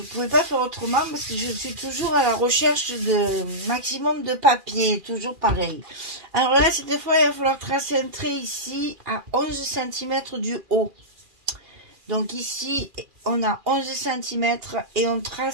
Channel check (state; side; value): late; left; 2.4 ms